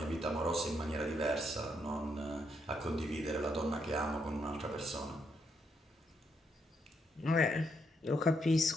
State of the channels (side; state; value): both; normal; correlation 0.77